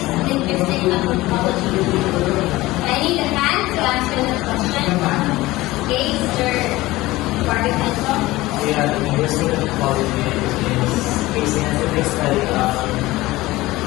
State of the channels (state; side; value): quieter; right; 18.7 dB